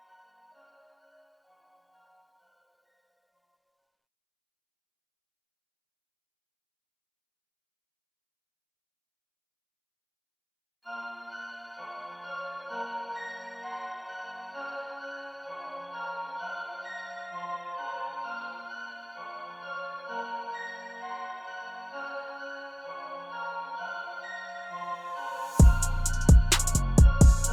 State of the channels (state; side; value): identical; both; correlation 1.00